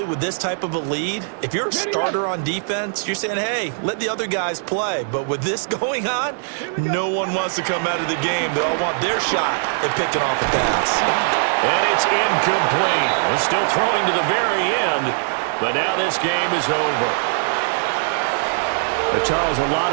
with this type of a lead, if you're a starter on defense, you're saying, hey, let the other guys play. But with this going on, no one wants to come out of the game. They all want their shot at picking off a pass. And it's incomplete. They're still throwing to the very end, but now this game is over. Charles, a lot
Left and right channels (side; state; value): left; silent; digital silence